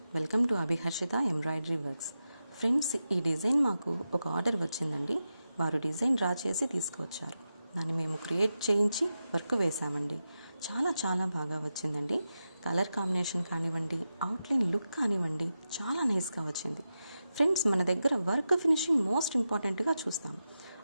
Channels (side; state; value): both; inverted; correlation -0.91